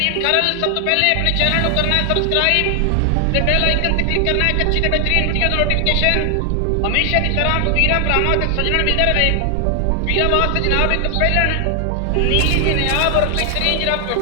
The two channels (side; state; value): both; different; correlation 0.00